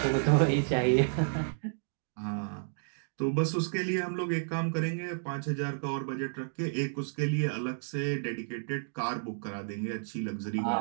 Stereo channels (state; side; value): silent; left; digital silence